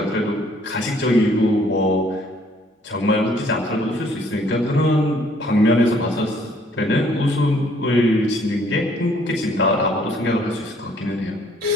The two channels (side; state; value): both; normal; correlation 0.62